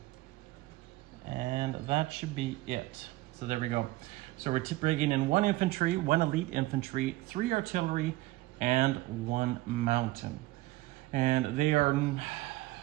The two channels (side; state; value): left; quieter; 18.6 dB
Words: and that should be it. So there we go. So we're bringing in 1 infantry, 1 elite infantry, 3 artillery, and 1 mountain. And they are,